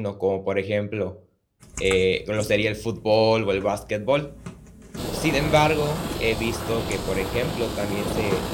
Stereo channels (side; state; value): both; identical; correlation 1.00